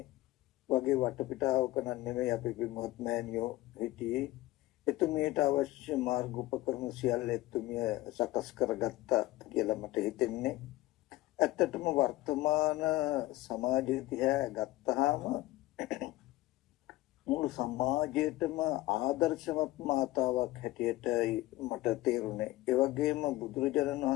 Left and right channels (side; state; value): right; quieter; 17.7 dB